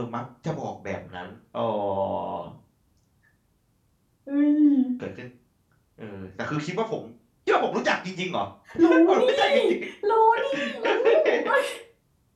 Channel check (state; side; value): identical; both; correlation 1.00